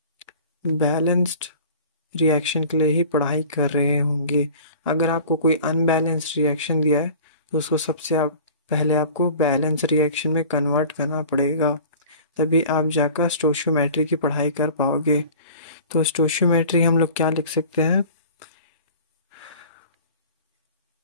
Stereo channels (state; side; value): inverted; both; correlation -0.43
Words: रिएक्शन के लिए ही पढ़ाई कर रहे होंगे। अगर आपको कोई अनबैलेंस्ड रिएक्शन दिया है तो उसको पहले आपको बैलेंस रिएक्शन में कन्वर्ट करना पड़ेगा, तभी आप जाकर स्टोइशियोमेट्री की पढ़ाई कर पाओगे। तो स्टोइशियोमेट्री हम लोग क्या लिख सकते हैं?